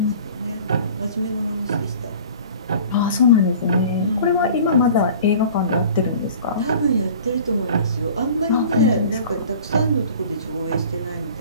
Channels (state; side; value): inverted; both; correlation -0.45